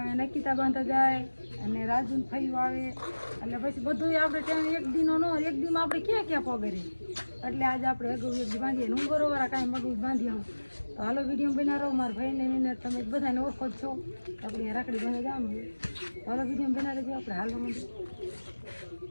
નકીતા બાંધવા જાય અને રાજુન ફઈ આવે એટલે પછી બધું આપણે ત્યાં એક દીનો ન એક દીમાં આપણે ક્યાં ક્યાં પગરે. એટલે આજે આપણે અગાઉ એક દી બાંધીએ હું બરોબર કાંઈ મગું બાંધી આવું. તો હાલો વિડીયો બનાવો. મારા ભાઈને એને તમે બધાને ઓળખો જ છો. આપણે રાખડી બાંધવા જવાનું. હાલો વિડીયો બનાવી આપણે હાલો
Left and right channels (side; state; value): both; inverted; correlation -1.00